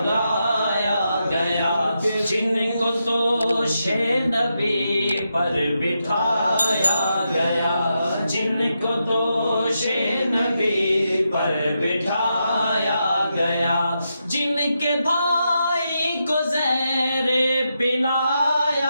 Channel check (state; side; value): inverted; both; correlation -0.85